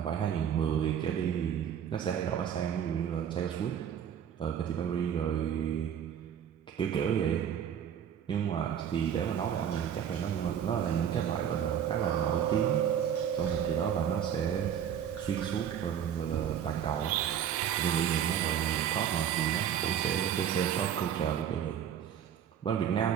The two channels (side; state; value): left; quieter; 9.1 dB